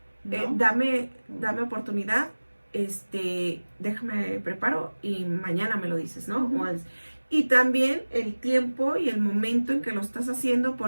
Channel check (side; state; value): both; inverted; correlation -1.00